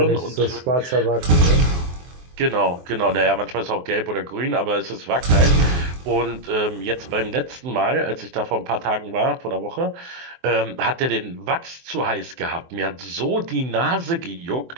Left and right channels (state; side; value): late; left; 23 ms